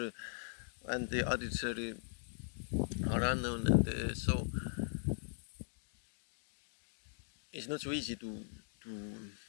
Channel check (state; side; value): silent; right; digital silence